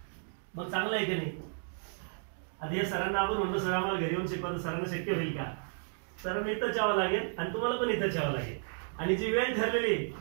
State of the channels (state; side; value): silent; left; 56 dB below the other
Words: मग चांगलं आहे की नाही? आता हे सरांना आपण म्हणतो सर आम्हाला घरी येऊन शिकवा, तर सरांना शक्य होईल का? सरांना इथंच यावं लागेल आणि तुम्हाला पण इथंच यावं लागेल. आणि जी वेळ ठरलेली